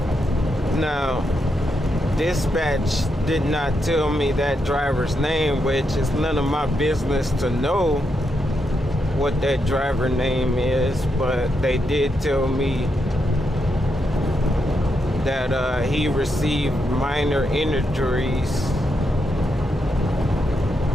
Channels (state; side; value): normal; both; correlation 0.82